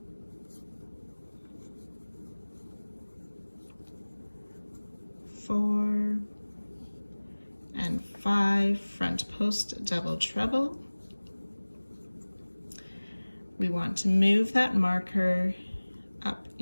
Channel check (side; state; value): both; inverted; correlation -1.00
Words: 4, and 5. Front post double treble. We want to move that marker up